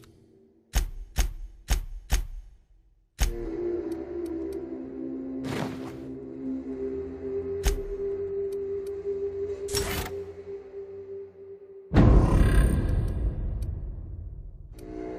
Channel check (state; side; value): identical; both; correlation 1.00